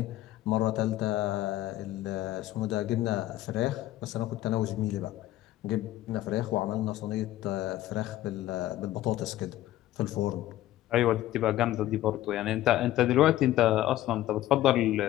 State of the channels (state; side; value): quieter; right; 14.6 dB